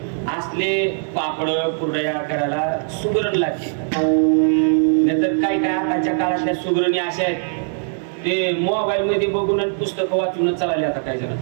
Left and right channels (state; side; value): silent; left; digital silence